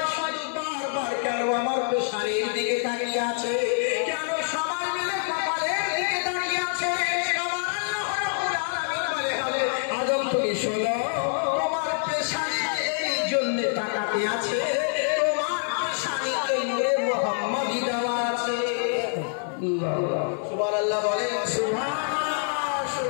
শুধু বারবার কেন আমার পেশানির দিকে তাকিয়ে আছে, কেন সবাই মিলে কপালের দিকে তাকিয়ে আছে। আমার আল্লাহ রাব্বুল আলামিন বলে, আদম তুমি শোনো, তোমার পেশানিতে এই জন্য তাকাতে আছে, তোমার পেশানিতে নূরে মুহাম্মাদি দেওয়া আছে। সুবহানাল্লাহ বলেন, সুবহানাল্লাহ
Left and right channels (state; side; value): silent; right; 61 dB below the other